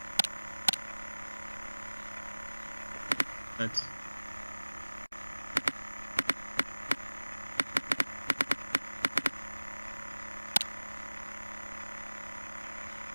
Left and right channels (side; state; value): both; inverted; correlation -1.00